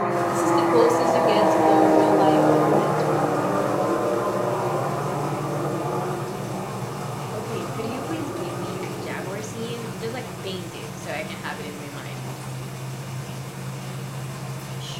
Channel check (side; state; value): both; identical; correlation 1.00